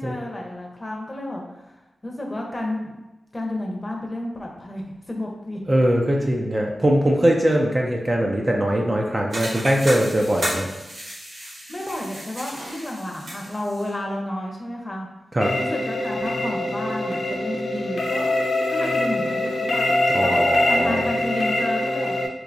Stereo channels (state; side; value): normal; both; correlation 0.93